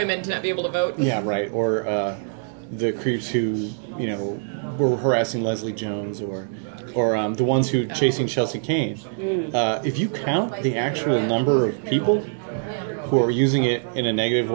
to not be able to vote. Yeah, right. Or the creeps who were harassing Leslie Jones, or the ones who chasing Chelsea Kane. If you count the actual number of people who are using it in a negative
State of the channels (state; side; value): silent; left; digital silence